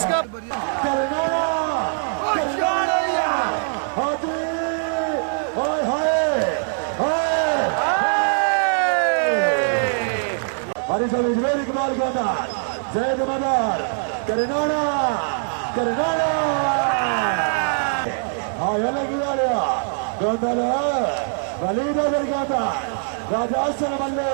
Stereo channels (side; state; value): left; silent; 64 dB below the other